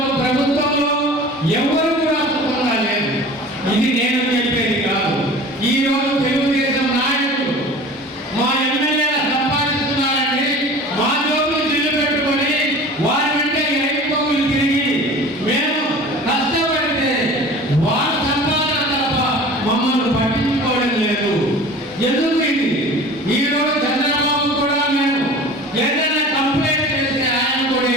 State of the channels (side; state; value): both; normal; correlation 0.40